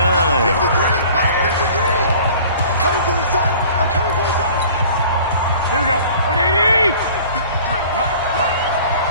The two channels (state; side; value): inverted; both; correlation -0.47